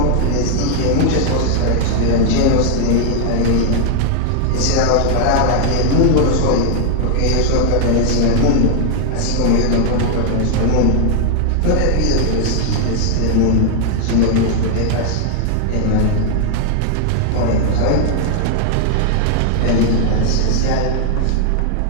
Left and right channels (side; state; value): both; different; correlation 0.00